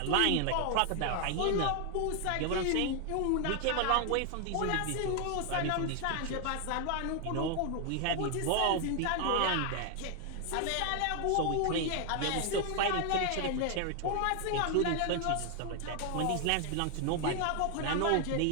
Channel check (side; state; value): both; different; correlation 0.00